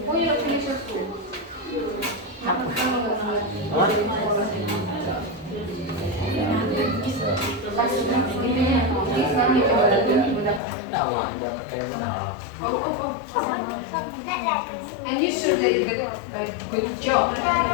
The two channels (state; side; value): drops out; right; at 10.6 s